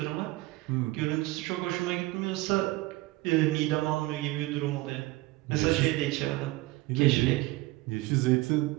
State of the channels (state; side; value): quieter; left; 19.9 dB